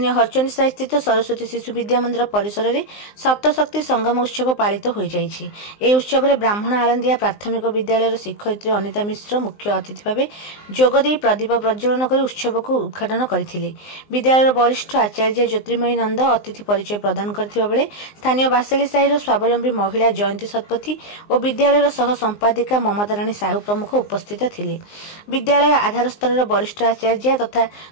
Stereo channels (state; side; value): late; right; 19 ms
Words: हरचंदी साई स्थित सरस्वती शिशु विद्या मंदिर परिसर में सप्तशक्ति संगम उत्सव पालित हो जाइछि। ए उत्सव में ब्राह्मण आलंदिया प्राथमिक विद्यालय शिक्षयित्री अनिता मिश्र मुख्य अतिथि भाव जोगदे प्रदीप प्रज्वलन कर उत्सव को उद्घाटन करथिले। विद्यालय वरिष्ठ आचार्य ज्योतिर्मयी नंद अतिथि परिचय प्रदान करथिबा बेले स्थानीय बासेली साहिर स्वावलंबी महिला जयंती शतपथी और विद्यालय सह संपादिका ममता राणी साहू प्रमुख उपस्थित थिले। विद्यालय आधार स्तर वरिष्ठ आचार्य तथा